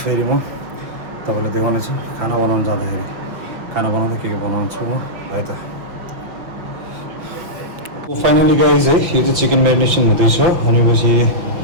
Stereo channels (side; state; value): left; late; 5.7 ms